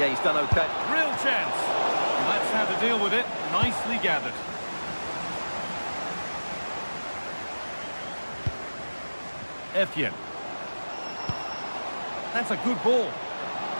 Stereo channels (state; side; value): inverted; both; correlation -1.00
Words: he's done okay. Real chance. And that's how to deal with it. Nicely gathered. Etienne. That's a good ball.